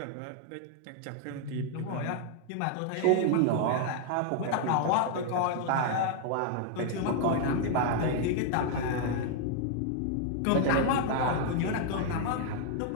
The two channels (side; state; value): both; different; correlation 0.00